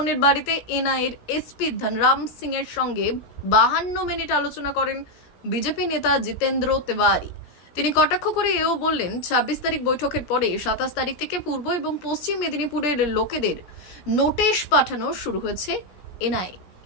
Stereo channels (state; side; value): late; right; 17 ms